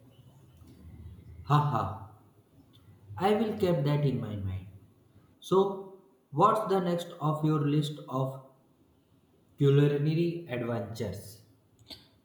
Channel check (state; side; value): identical; both; correlation 1.00